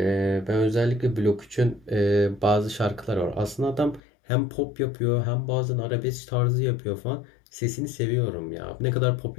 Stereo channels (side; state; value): right; drops out; at 4.0 s